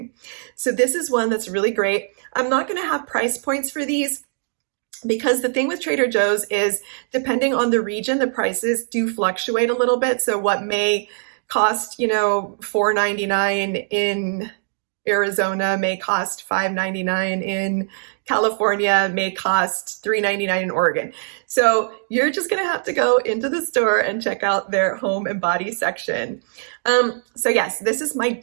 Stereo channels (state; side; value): silent; left; digital silence